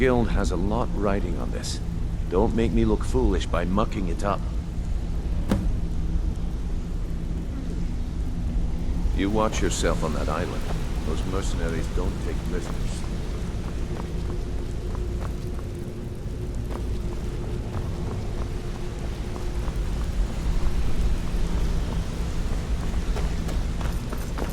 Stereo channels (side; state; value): both; identical; correlation 1.00